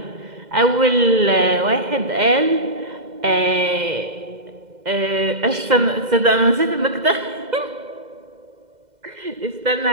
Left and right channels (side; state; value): left; late; 2.1 ms